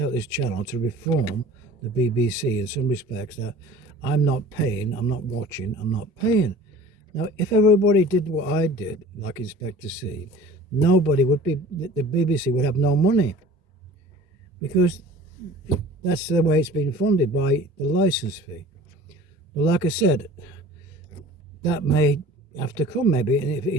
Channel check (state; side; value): normal; both; correlation 0.44